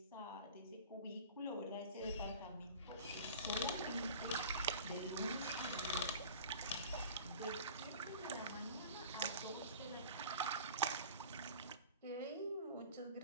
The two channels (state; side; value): inverted; both; correlation -0.40